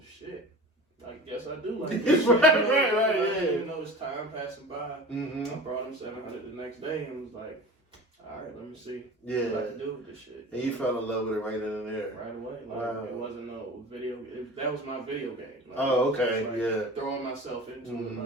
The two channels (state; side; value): normal; both; correlation 0.36